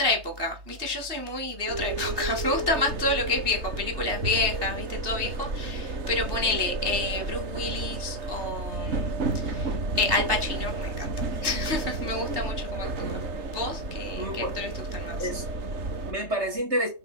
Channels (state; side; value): late; left; 3.3 ms